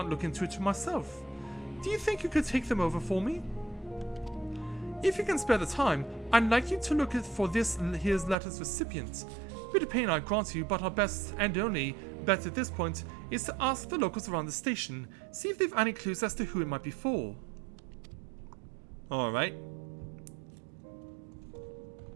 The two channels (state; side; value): drops out; left; at 8.3 s